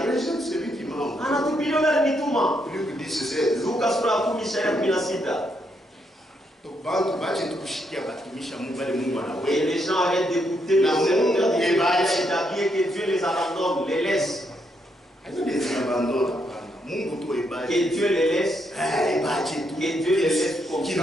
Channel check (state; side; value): normal; both; correlation 0.77